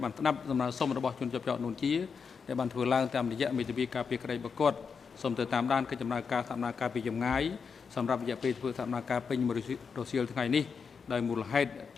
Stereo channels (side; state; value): right; quieter; 5.8 dB